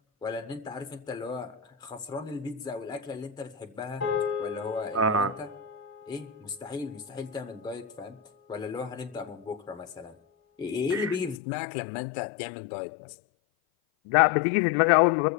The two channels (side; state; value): right; drops out; at 11.4 s